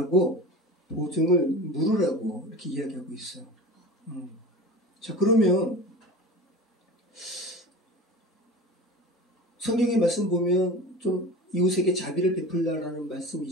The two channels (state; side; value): normal; both; correlation 0.34